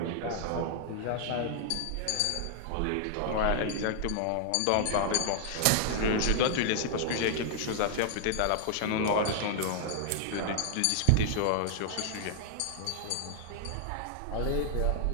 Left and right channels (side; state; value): both; different; correlation -0.01